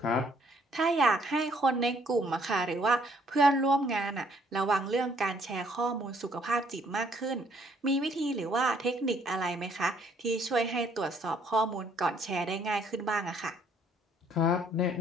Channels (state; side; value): normal; both; correlation 0.65